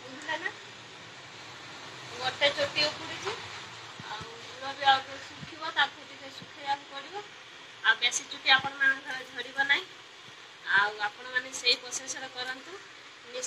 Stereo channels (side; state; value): both; identical; correlation 1.00